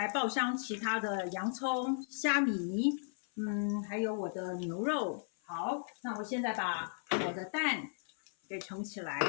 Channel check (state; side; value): silent; right; 54 dB below the other